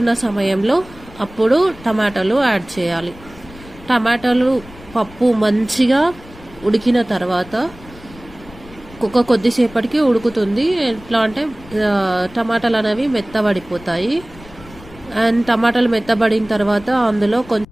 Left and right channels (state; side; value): noise; left; rumble, 20 dB below the sound